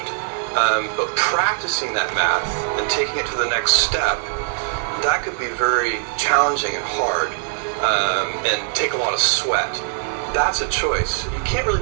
But practicing that math and taking it to the next step, that could be very challenging and hard, and take a lot of sweat. That's a choice. You can't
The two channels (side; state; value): left; silent; digital silence